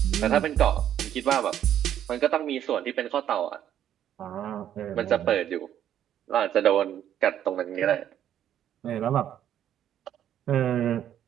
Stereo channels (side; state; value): left; quieter; 10.6 dB